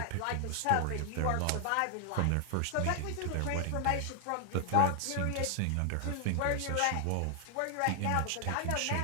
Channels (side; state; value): both; different; correlation 0.00